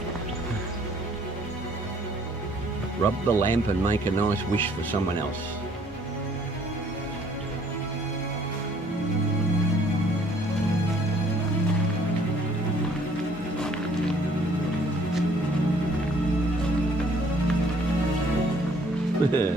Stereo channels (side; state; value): both; normal; correlation 0.60